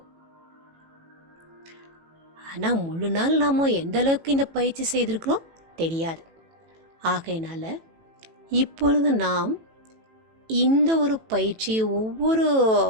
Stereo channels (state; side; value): late; left; 18 ms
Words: ஆனால் முழு நாள் நாம் எந்த அளவுக்கு இந்த பயிற்சி செய்திருக்கிறோம் தெரியாது. ஆகையினால இப்பொழுது நாம் இந்த ஒரு பயிற்சியை ஒவ்வொரு